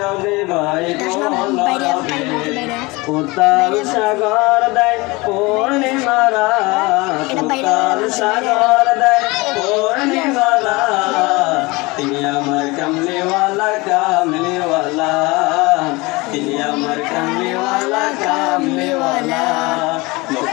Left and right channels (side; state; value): right; quieter; 23.8 dB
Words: বহে কলরবে। উত্তাল সাগর দেয় পূর্ণিমারা, উত্তাল সাগর দেয় পূর্ণিমারা। তিনি আমার কামলিওয়ালা কামলিওয়ালা, তিনি আমার কামলিওয়ালা কামলিওয়ালা।